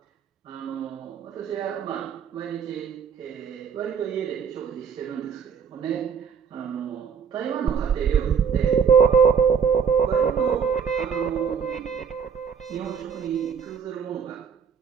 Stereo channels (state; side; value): quieter; left; 6.9 dB